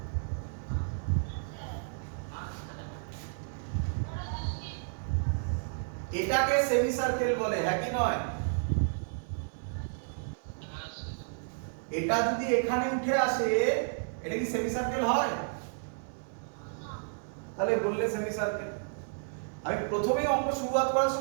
এটাকে সেমি সার্কেল বলে, হ্যাঁ কি নয়? এটা যদি এখানে উঠে আসে, এটা কি সেমি সার্কেল হয়? তাহলে বললে সেমি সার্কেল। আমি প্রথমেই অঙ্ক শুরুয়াত করার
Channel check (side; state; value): left; silent; digital silence